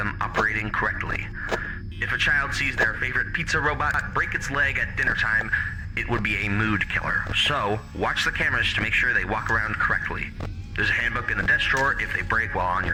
operating correctly. If a child sees their favorite pizza robot break its leg at dinner time, it would be a mood killer. So, watch the cameras to make sure they walk around correctly. There's a handbook in the desk drawer if they break while on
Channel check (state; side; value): identical; both; correlation 1.00